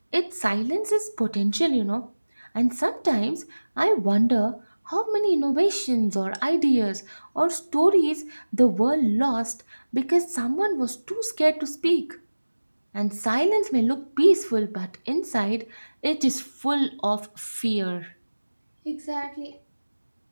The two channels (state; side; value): inverted; both; correlation -1.00